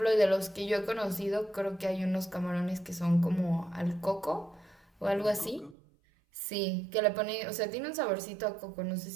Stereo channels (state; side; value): drops out; left; at 5.8 s